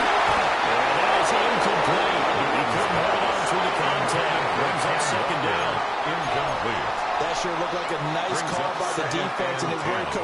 that is incomplete. He couldn't hold on through the contact. Brings up 2nd down. Incomplete. That sure looked like a nice call by the defense, and is very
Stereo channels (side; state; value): both; identical; correlation 1.00